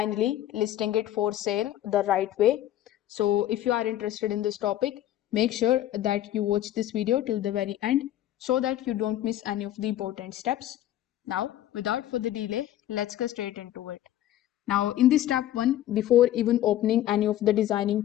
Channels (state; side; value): quieter; right; 12.9 dB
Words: listing it for sale the right way. So if you are interested in this topic, make sure that you watch this video till the very end so that you don't miss any of the important steps. Now, without further delay, let's go straight into it. Now, in this step one, before even opening any of the